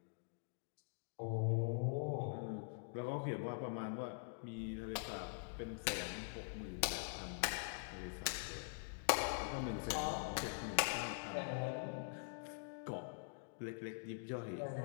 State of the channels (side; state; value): right; silent; digital silence